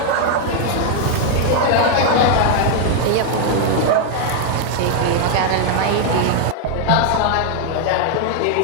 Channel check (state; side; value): different; both; correlation 0.00